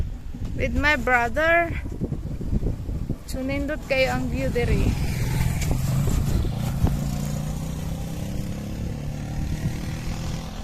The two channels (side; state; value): both; identical; correlation 1.00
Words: With my brother. So nindot kayo ang view diri.